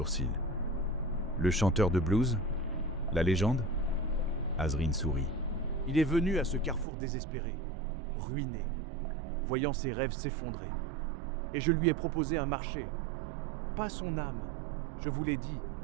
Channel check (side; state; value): left; drops out; at 6.9 s